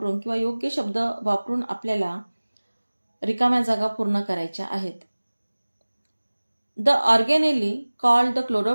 किंवा योग्य शब्द वापरून आपल्याला रिकाम्या जागा पूर्ण करायच्या आहेत। The organelle called the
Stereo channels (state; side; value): inverted; both; correlation -1.00